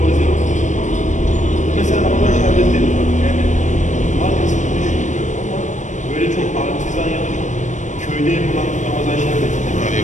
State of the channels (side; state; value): right; late; 0.35 ms